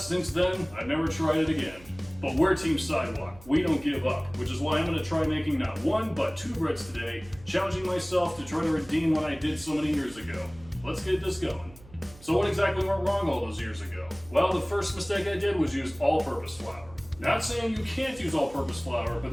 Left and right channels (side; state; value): right; noise; hum, 21 dB below the sound